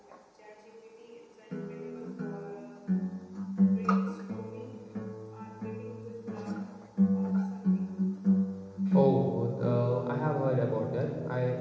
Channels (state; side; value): identical; both; correlation 1.00